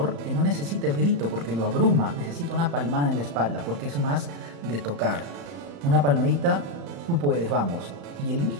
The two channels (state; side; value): late; left; 35 ms